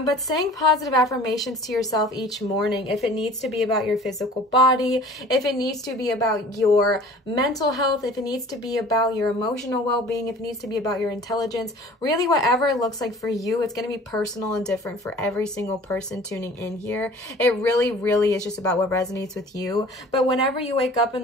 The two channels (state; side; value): normal; both; correlation 0.47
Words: saying positive affirmations to yourself each morning, if it needs to be about your physical body, if it needs to be about your mental health, if it needs to be about your emotional well-being, if it needs to be about your intelligence, really whatever it looks like for you, it's going to be personal and different for every single person tuning in here. It really, really is just about what resonates with you. But whenever you wake up in